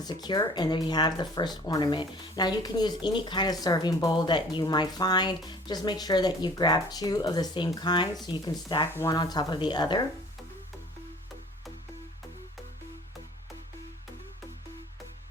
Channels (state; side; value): normal; both; correlation 0.50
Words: secure, and there you have the first ornament. Now you can use any kind of serving bowl that you might find. Just make sure that you grab two of the same kind so you can stack one on top of the other.